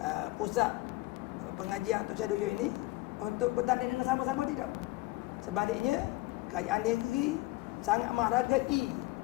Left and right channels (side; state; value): right; quieter; 19.9 dB